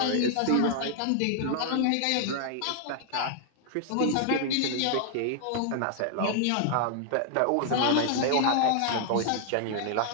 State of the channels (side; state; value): both; different; correlation 0.00